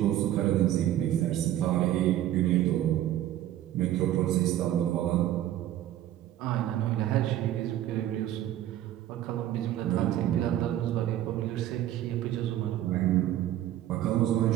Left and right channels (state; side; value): quieter; left; 12.7 dB